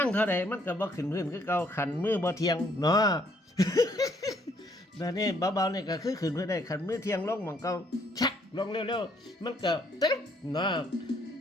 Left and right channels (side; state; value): both; normal; correlation 0.67